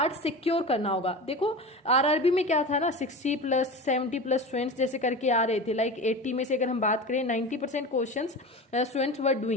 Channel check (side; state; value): both; normal; correlation 0.30